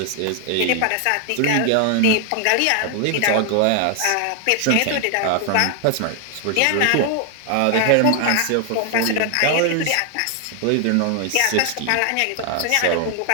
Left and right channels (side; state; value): both; different; correlation 0.00